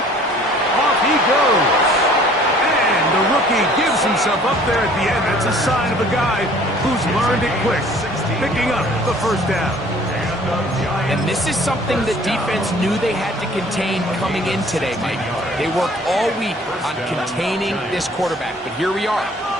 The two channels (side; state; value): both; normal; correlation 0.53